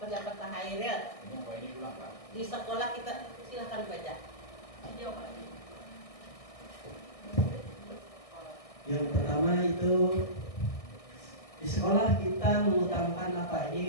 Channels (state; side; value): late; right; 1.6 ms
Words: pendapat Pak Hairil. Ini pulang Pak. Di sekolah kita silakan baca. Yang pertama itu di sekolah kita mengutamakan apa